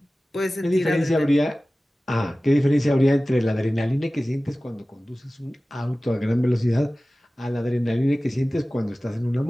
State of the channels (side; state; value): both; normal; correlation 0.97